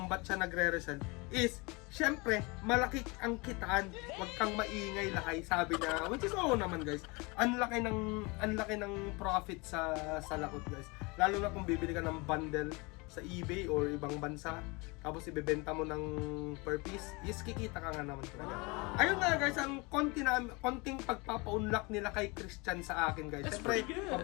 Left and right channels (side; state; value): right; quieter; 27.0 dB